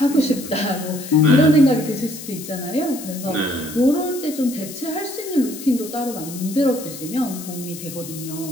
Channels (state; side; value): noise; left; hiss, 12 dB below the sound